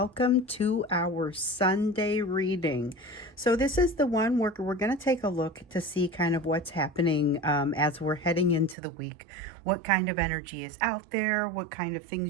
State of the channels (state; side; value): drops out; left; at 8.8 s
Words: to our Sunday reading. So this is the one where we're going to take a look to see kind of what's happening as we're heading into the week, what kind of energy is out there, what kind of